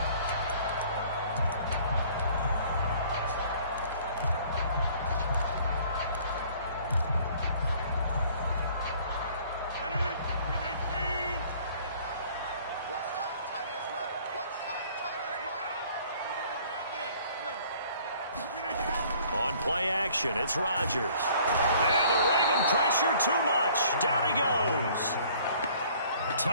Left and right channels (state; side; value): inverted; both; correlation -0.55